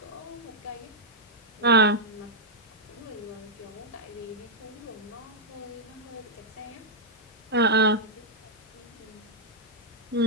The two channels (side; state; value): both; normal; correlation -0.06